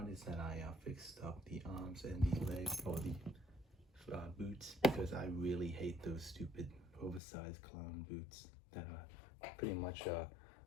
is that I fixed up the arms and the leg or the boots, because I really hate those stupid oversized clown boots that are pretty much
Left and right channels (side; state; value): right; drops out; at 7.2 s